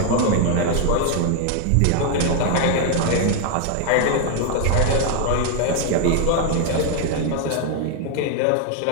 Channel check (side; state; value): both; different; correlation 0.00